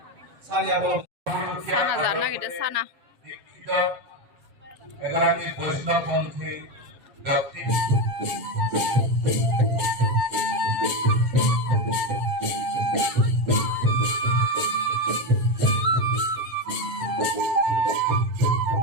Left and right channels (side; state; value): left; late; 7.7 ms